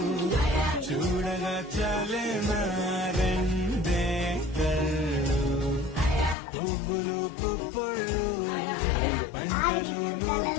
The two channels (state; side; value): drops out; right; at 6.4 s